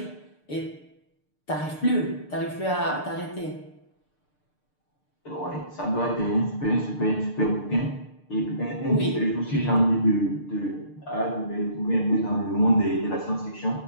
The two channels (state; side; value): late; right; 6.7 ms